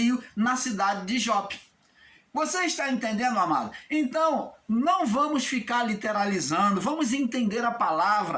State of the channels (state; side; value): identical; both; correlation 1.00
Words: na cidade de Jope. Você está entendendo, amado? Então, não vamos ficar literalizando, vamos entender a